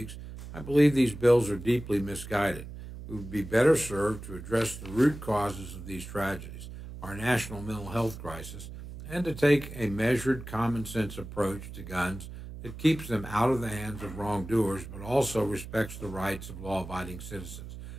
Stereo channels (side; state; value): right; noise; hum, 12 dB below the sound